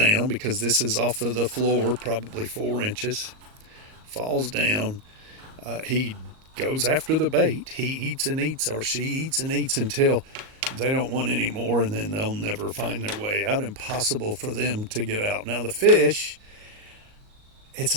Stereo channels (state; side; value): late; left; 38 ms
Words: because this is off of the floor, probably 4 inches, falls down. He goes after the bait. He eats and eats, or she eats and eats until they don't want any more, and then they'll never find their way out. Impossible for them to get out. Now, the fish, it's